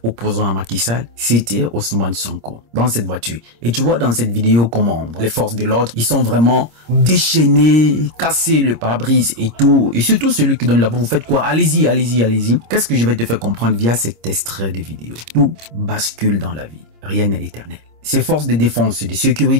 opposant à Macky Sall, c'était Ousmane Sonko, dans cette voiture. Et tu vois dans cette vidéo comment les forces de l'ordre, ils sont vraiment déchaînés, cassés le pare-brise et tout. Et surtout celui qui donne la voix, vous faites quoi? Allez-y, allez-y, allez-y. Qu'est-ce que je vais te faire comprendre via cet extrait de vidéo? Tout bascule dans la vie. Rien n'est éternel. Ces forces de défense et de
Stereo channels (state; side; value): late; left; 26 ms